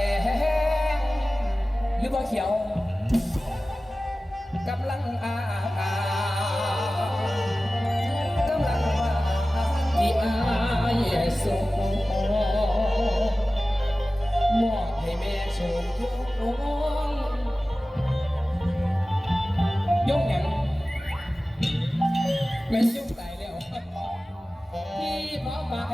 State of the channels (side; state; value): both; normal; correlation 0.96